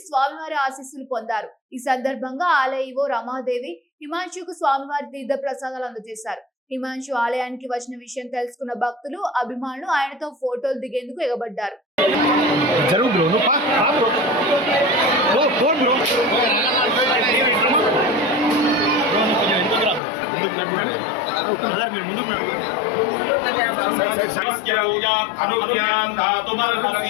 స్వామివారి ఆశీస్సులు పొందారు. ఈ సందర్భంగా ఆలయ ఈవో రమాదేవి హిమాంశుకు స్వామివారి తీర్థ ప్రసాదాలు అందజేశారు. హిమాంశు ఆలయానికి వచ్చిన విషయం తెలుసుకున్న భక్తులు, అభిమానులు ఆయనతో ఫోటోలు దిగేందుకు ఎగబడ్డారు.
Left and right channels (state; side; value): drops out; right; at 20.0 s